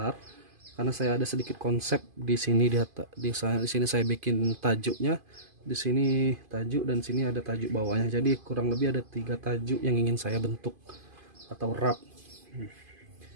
Karena saya ada sedikit konsep di sini, di sini saya bikin tajuknya, di sini tajuk dan sini ada tajuk bawahnya. Jadi kurang lebih ada 3 tajuk yang ingin saya bentuk atau wrap.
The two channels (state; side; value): late; left; 2.5 ms